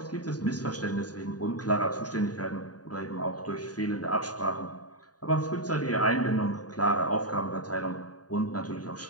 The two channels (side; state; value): right; late; 0.68 ms